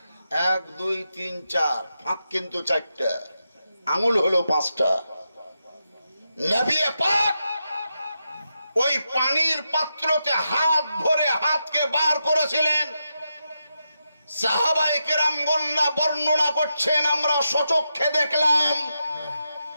1 2 3 4, ফাঁক কিন্তু 4টা, আঙুল হলো 5টা। নবী পাক ওই পানির পাত্রতে হাত ভরে হাতকে বার করেছিলেন। সাহাবায়ে কেরামগণরা বর্ণনা করছেন, আমরা সচক্ষে দেখলাম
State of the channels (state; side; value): inverted; both; correlation -0.86